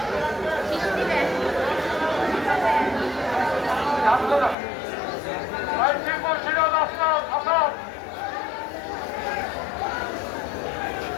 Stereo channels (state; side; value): drops out; right; at 4.5 s